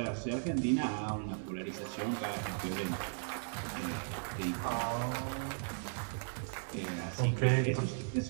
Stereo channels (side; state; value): left; silent; 53 dB below the other